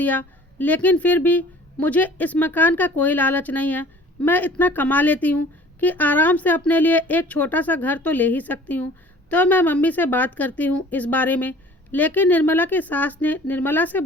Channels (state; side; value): normal; both; correlation 0.49